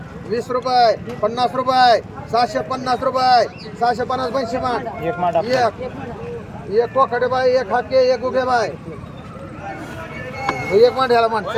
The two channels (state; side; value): identical; both; correlation 1.00